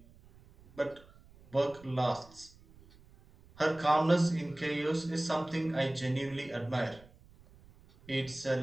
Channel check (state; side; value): noise; right; rumble, 25 dB below the sound